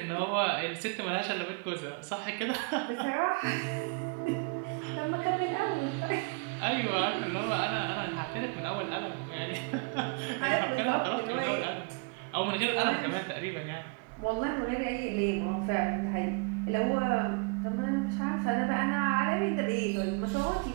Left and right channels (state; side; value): quieter; left; 30.5 dB